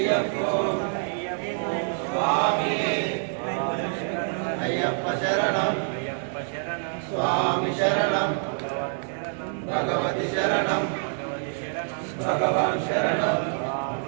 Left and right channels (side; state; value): left; silent; 61 dB below the other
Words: స్వామి అయ్యప్ప శరణం స్వామి శరణం భగవతి శరణం భగవాన్ శరణం